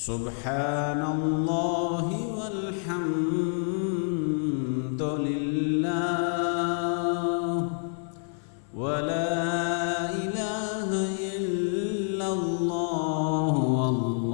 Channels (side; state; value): right; silent; 59 dB below the other